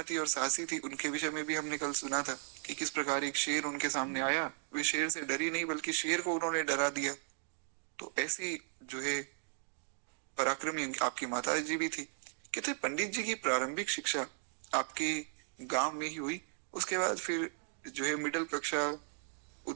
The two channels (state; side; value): silent; left; digital silence